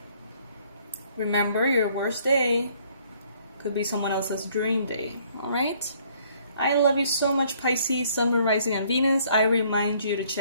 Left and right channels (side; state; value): both; inverted; correlation -0.62